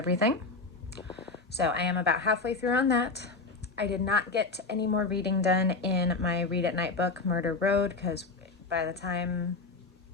So I am about halfway through on that. I did not get any more reading done in my read at night book, Murder Road, because by the time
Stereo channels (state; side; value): quieter; right; 3.9 dB